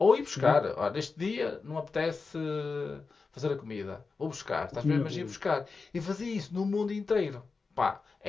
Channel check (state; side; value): quieter; right; 4.4 dB